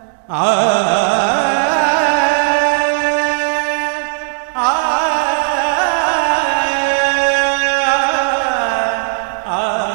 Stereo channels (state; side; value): silent; left; 64 dB below the other